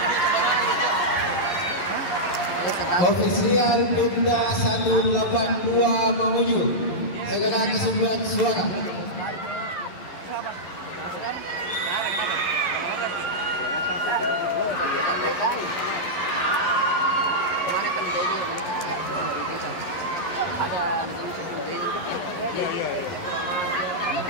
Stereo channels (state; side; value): late; right; 11 ms